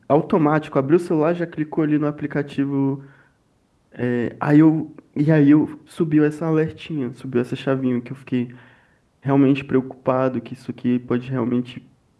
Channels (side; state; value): both; identical; correlation 1.00